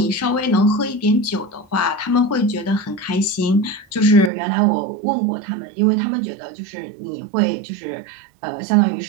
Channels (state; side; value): drops out; left; at 4.3 s